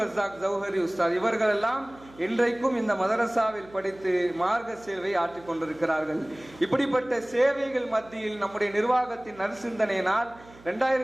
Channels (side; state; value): right; noise; hum, 23 dB below the sound